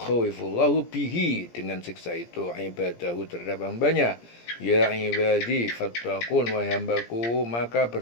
bihi, dengan siksa itu, ibadahu, terhadap hambanya. Ya ibadi fattaqun, wahai hambaku, maka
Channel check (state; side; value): late; right; 17 ms